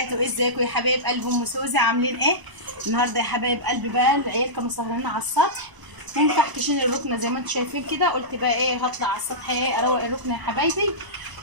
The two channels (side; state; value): left; late; 1.0 ms